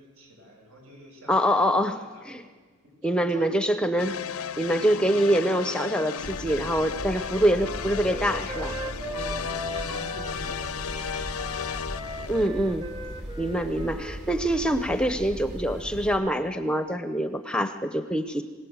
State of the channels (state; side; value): normal; both; correlation 0.72